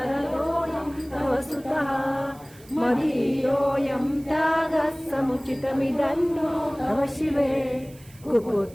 तव सुतः मदीयोऽयं त्यागः समुचितमिदन्नो तव शिवे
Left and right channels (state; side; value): noise; right; hiss, 24 dB below the sound